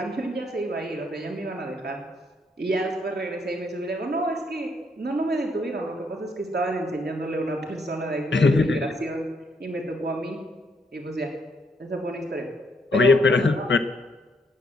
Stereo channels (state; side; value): normal; both; correlation 0.73